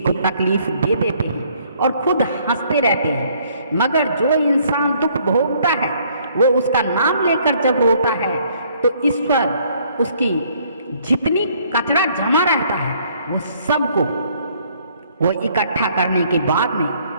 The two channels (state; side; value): inverted; both; correlation -0.63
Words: तकलीफ दे देते हैं और खुद हंसते रहते हैं, मगर जो इंसान दुख भोगता है वो उसका नाम लेकर जब रोता है तो ईश्वर उसकी जितनी कचरा जमा रहता है वो सबको वो इकट्ठा करने के बाद में